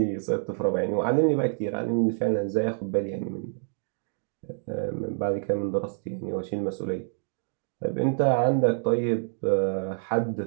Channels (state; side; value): silent; left; digital silence